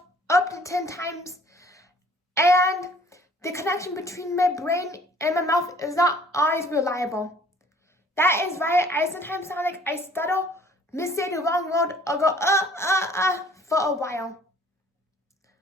up to 10 times, and the connection between my brain and my mouth is not always reliable. That is why I sometimes sound like I stutter, missay the wrong word, or go for a while.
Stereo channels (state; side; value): normal; both; correlation 0.55